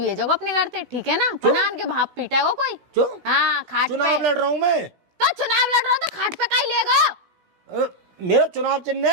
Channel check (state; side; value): late; left; 16 ms